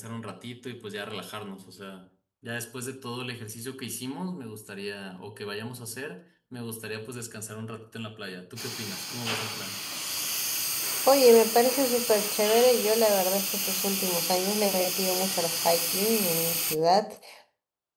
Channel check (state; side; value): identical; both; correlation 1.00